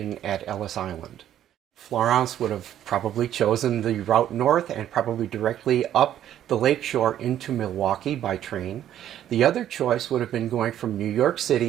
at Ellis Island. Florence would have probably chosen the route north and probably directly up the lakeshore into Milwaukee by train. The other choice would have been going from New York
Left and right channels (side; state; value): left; quieter; 11.2 dB